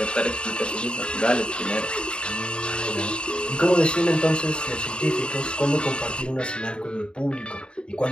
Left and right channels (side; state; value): right; late; 0.053 ms